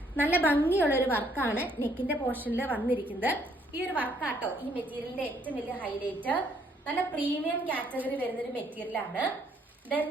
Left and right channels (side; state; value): both; normal; correlation 0.67